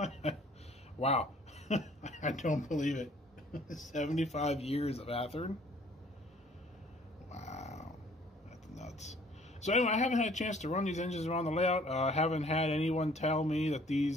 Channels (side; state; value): both; normal; correlation 0.57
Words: Wow. I don't believe it. 75 years of Athearn? Wow. That's nuts. So anyway, I haven't had a chance to run these engines around the layout. I haven't had anyone tell me that